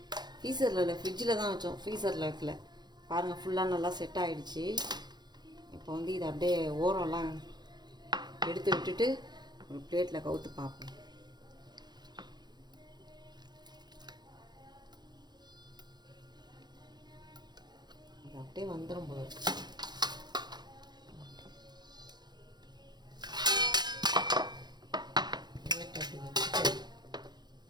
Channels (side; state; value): left; late; 0.21 ms